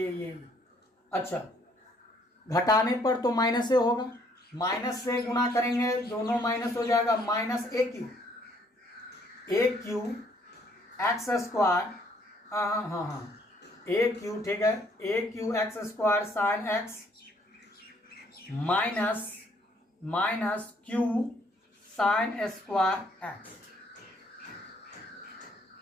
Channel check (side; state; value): both; normal; correlation 0.65